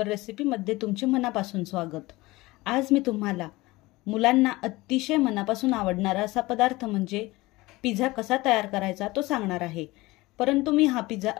रेसिपीमध्ये तुमचे मनापासून स्वागत। आज मी तुम्हाला मुलांना अतिशय मनापासून आवडणारा असा पदार्थ म्हणजे पिझ्झा कसा तयार करायचा तो सांगणार आहे। परंतु मी हा पिझ्झा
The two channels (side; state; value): right; quieter; 20.6 dB